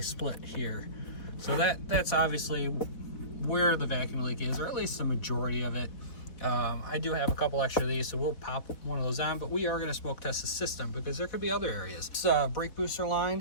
split here. So that's obviously where the vacuum leak is, or at least the majority of it. I do have a couple extra of these, so we'll pop one of those on, but we are going to smoke test the system because there could be other areas. This brake booster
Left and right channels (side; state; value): right; late; 4.1 ms